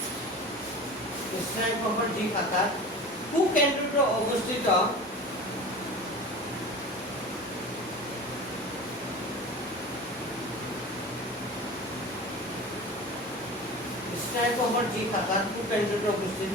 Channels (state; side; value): normal; both; correlation 0.35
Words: স্নায়ু কোষৰ যি শাখাত কুকেন্দ্ৰটো অৱস্থিত স্নায়ু কোষৰ যি শাখাত কুকেন্দ্ৰটো